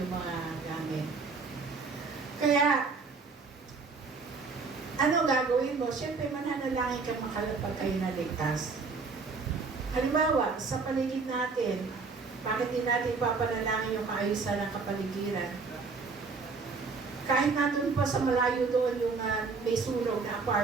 mga gamit. Kaya, ano gagawin mo? Siyempre, mananalangin ka makalapag kayo na ligtas. Halimbawa, sa paligid natin, bakit din natin papanalangin yung kaayusan ng kapaligiran? Kahit nandun pa sa malayo doon yung may sunog na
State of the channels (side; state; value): left; quieter; 4.5 dB